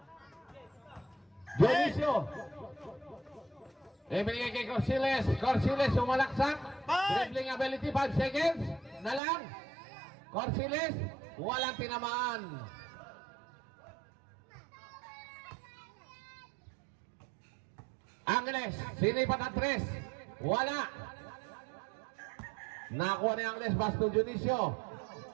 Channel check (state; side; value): drops out; left; at 9.2 s